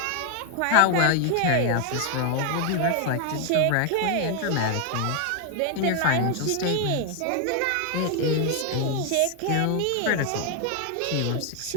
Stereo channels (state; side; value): different; both; correlation 0.00